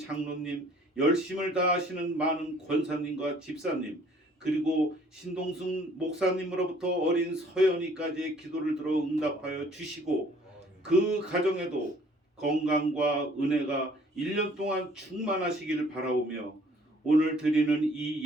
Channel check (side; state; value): both; normal; correlation 0.57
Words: 열심을 다하시는 많은 권사님과 집사님, 그리고 신동순 목사님으로부터 어린 서연이까지의 기도를 들어 응답하여 주시고 그 가정에도 건강과 은혜가 1년 동안 충만하시기를 바라오며 오늘 드리는 이